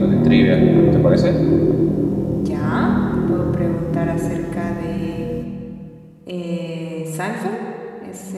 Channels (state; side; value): identical; both; correlation 1.00